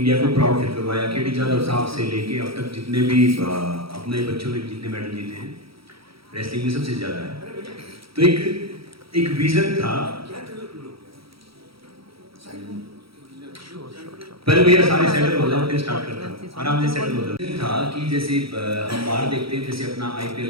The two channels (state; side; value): late; left; 0.75 ms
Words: को प्राउड फील करवाया। केडी जाधव साहब से लेके अब तक जितने भी अपने बच्चों ने जितने मेडल जीते हैं रेसलिंग में सबसे ज़्यादा है। तो एक विजन था, पहले भैया सारे सेटल हो जाओ फिर स्टार्ट करता हूँ, आराम से सेटल हो जाओ। था कि जैसे हम बाहर देखते हैं, जैसे अपना